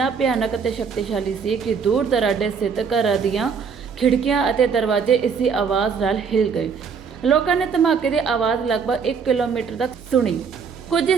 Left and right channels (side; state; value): left; quieter; 6.1 dB